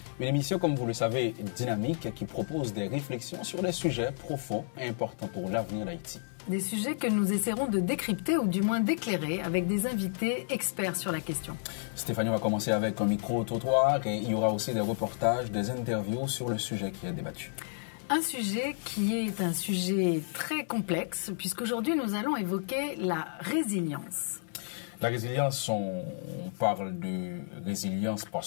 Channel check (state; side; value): silent; right; digital silence